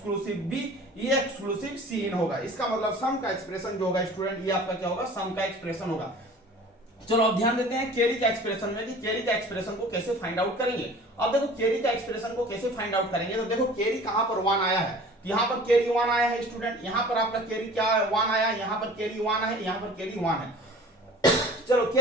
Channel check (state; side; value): normal; both; correlation 0.44